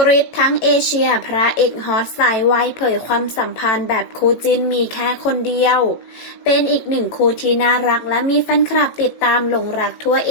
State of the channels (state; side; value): late; right; 18 ms